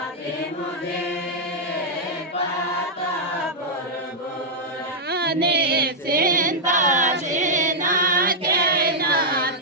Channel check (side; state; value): both; normal; correlation -0.06